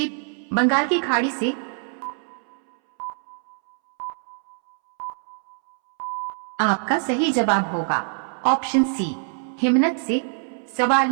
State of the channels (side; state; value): left; silent; 63 dB below the other